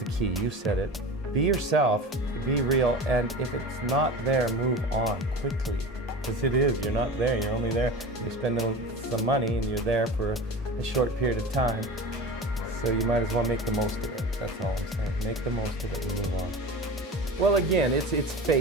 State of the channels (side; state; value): both; normal; correlation 0.32